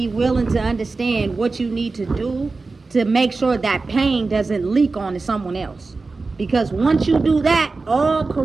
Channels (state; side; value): quieter; left; 3.9 dB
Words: willing to understand what you need to do to make sure that pain doesn't leak onto someone else. Because once you do that, all